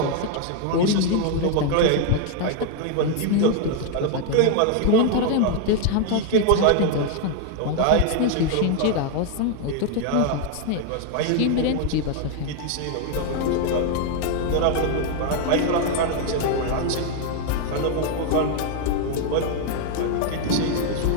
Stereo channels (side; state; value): both; different; correlation 0.00